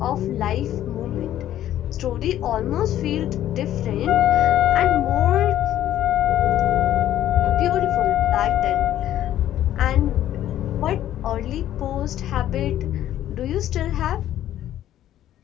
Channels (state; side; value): quieter; right; 12.3 dB